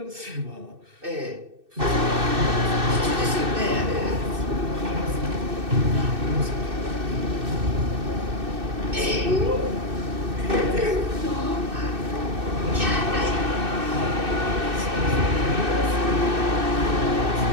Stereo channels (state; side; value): late; left; 2.6 ms